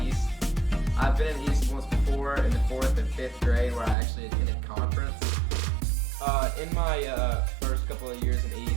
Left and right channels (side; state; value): left; drops out; at 4.0 s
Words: East. I've been in East once before in the 4th and 5th grade where I actually attended Conference. In my first couple of years in